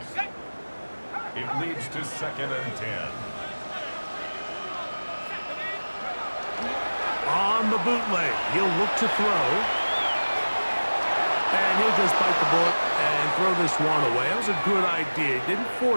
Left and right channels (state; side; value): inverted; both; correlation -1.00